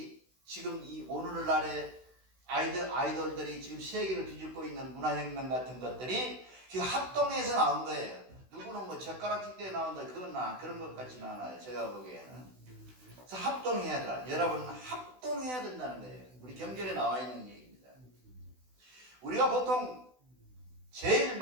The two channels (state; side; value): late; left; 16 ms